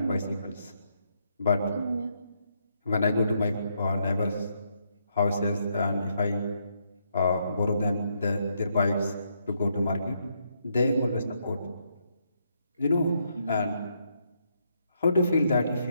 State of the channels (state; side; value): inverted; both; correlation -0.77